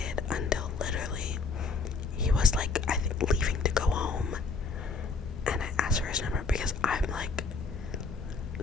until literally he was like, I think, leaving to go home, and I asked for his number because I'm like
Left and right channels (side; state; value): right; quieter; 4.4 dB